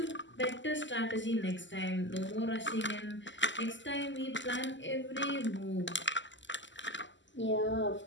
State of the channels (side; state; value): right; late; 0.54 ms